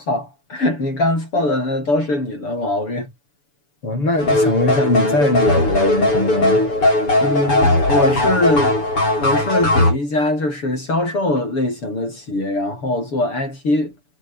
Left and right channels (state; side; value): late; right; 6.9 ms